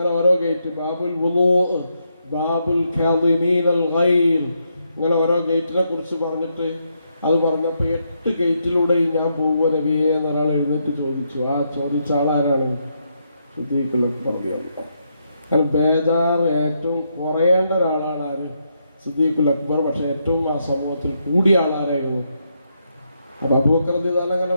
ഓരോ ഗേറ്റ്. ബാബുൽ വുളൂ, ബാബുൽ കാദിമീനൽ ഗൈൽ, ഇങ്ങനെ ഓരോ ഗേറ്റിനെ കുറിച്ച് പറഞ്ഞിട്ട് അത് പറഞ്ഞപ്പോൾ 8 ഗേറ്റിലൂടെയും ഞാൻ പോകുമോ നബിയെ എന്നൊരാൾ എഴുന്നേറ്റ് ചോദിച്ചു. ആ ചോദിച്ച ആളാരാണ്? സിദ്ദീഖ് അക്ബർ. കാരണം ബേജാറ് ഏറ്റവും കുറയേണ്ട ഒരാളാണ് ആര്? സിദ്ദീഖ് അക്ബർ. പക്ഷെ ഏറ്റവും ആ സമൂഹത്തിൽ കൂടിയ ആളാരായിരുന്നു? അപ്പോൾ അബൂബക്കർ റളിയല്ലാഹു അൻഹു അങ്ങനെ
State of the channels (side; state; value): both; inverted; correlation -0.79